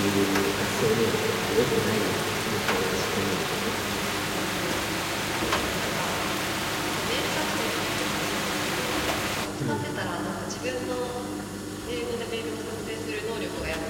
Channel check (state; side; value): identical; both; correlation 1.00